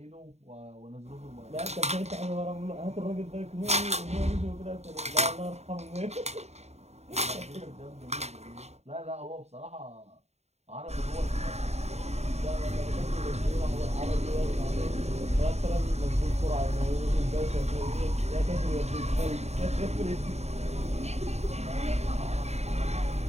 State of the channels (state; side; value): late; left; 0.32 ms